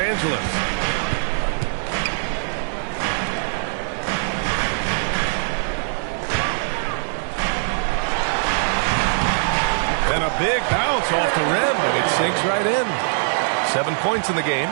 And a big bounce off the rim, but it sinks right in. 7 points in the game.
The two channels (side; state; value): left; silent; digital silence